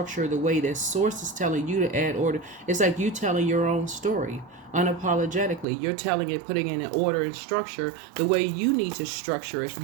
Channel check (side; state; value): left; drops out; at 5.7 s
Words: the way that source is telling you to add order. It's like you telling your own story unapologetically. You're telling it, putting in an order and structure the way you need to structure it.